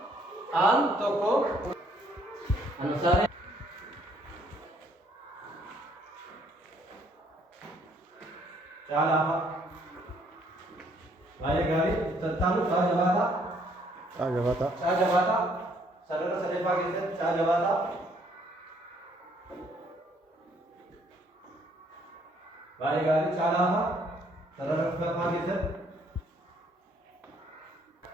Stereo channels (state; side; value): normal; both; correlation 0.65